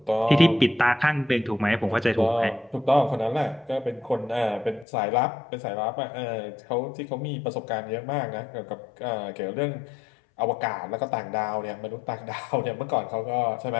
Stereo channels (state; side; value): drops out; right; at 4.9 s